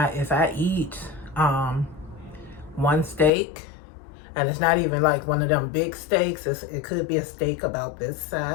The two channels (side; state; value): right; drops out; at 3.3 s